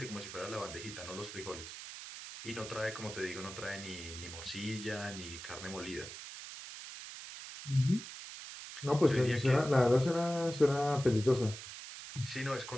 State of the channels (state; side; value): noise; right; hiss, 11 dB below the sound